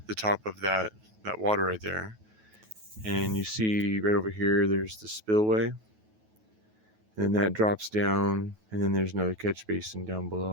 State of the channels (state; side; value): late; left; 9.3 ms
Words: the top of that water right there, and you see right over here there's the spillway, and then that drops down, and then there's another catch basin down